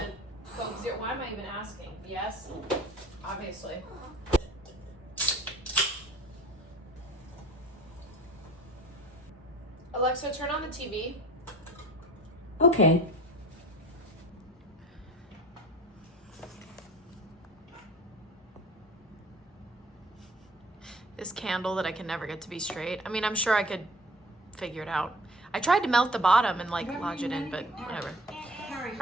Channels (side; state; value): both; normal; correlation 0.45